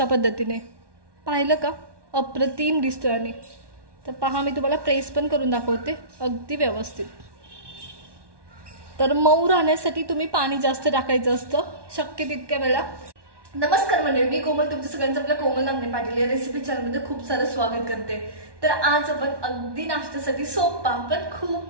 पद्धतीने पाहिलं का, अप्रतिम दिसतोय। आणि तर पहा, मी तुम्हाला प्रेस पण करून दाखवते अगदी व्यवस्थित। तर मऊ राहण्यासाठी तुम्ही पाणी जास्त टाकायचं असतं शक्य तितक्या वेळा। नमस्कार मंडळी, मी कोमल तुमचं सगळ्यांचं आपल्या कोमल नागणे पाटील या रेसिपी चॅनलमध्ये खूप सारं स्वागत करते। तर आज आपण अगदी नाश्त्यासाठी सोपा पण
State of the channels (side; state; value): left; late; 1.1 ms